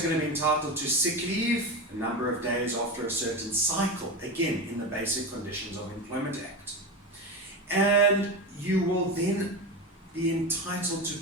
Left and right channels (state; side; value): normal; both; correlation 0.21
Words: going to be entitled to sick leave, a number of days after a certain cycle, again in the Basic Conditions of Employment Act. And you will then be entitled to